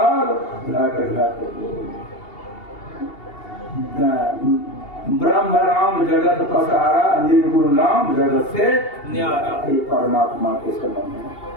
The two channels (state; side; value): late; right; 2.8 ms